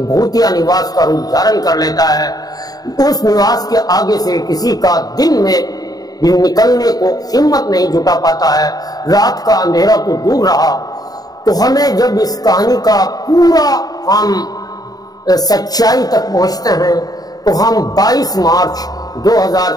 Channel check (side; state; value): right; late; 0.18 ms